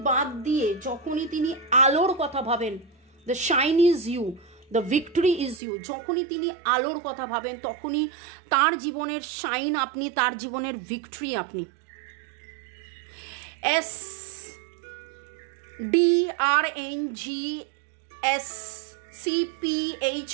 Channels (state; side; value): drops out; left; at 5.6 s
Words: বাদ দিয়ে যখনই তিনি আলোর কথা ভাবেন, the shine is you, the victory is you, যখনই তিনি আলোর কথা ভাবেন তখনই তার জীবনের শাইন আপনি, তার জীবনের ভিক্টরি আপনি।